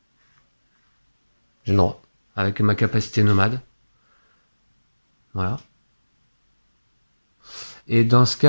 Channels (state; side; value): inverted; both; correlation -1.00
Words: J'ai le droit. Avec ma capacité nomade. Voilà. Et dans ce